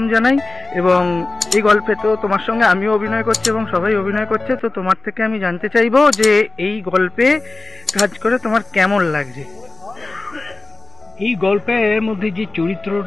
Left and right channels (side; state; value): right; quieter; 3.3 dB